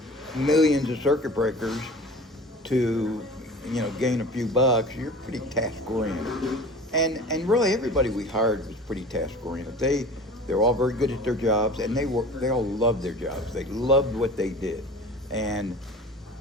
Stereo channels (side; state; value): both; normal; correlation 0.39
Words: millions of circuit breakers to, gain a few bucks, you're pretty task oriented. And really everybody we hired was pretty task oriented. They're all very good at their jobs, and they all loved their jobs. They loved what they did. And